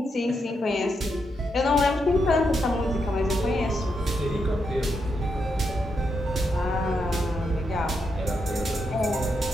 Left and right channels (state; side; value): normal; both; correlation 0.82